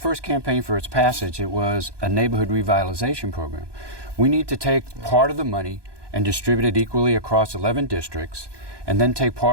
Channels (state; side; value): late; left; 1.2 ms